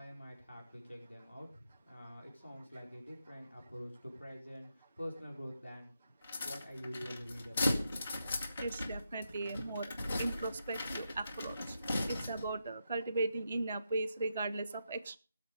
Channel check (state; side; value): inverted; both; correlation -0.84